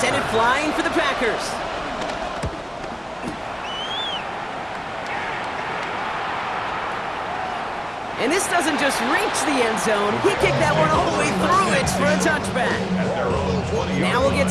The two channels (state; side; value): identical; both; correlation 1.00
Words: it flying for the Packers. And this doesn't just reach the end zone. He kicked that one all the way through it for a touchback. Now we'll get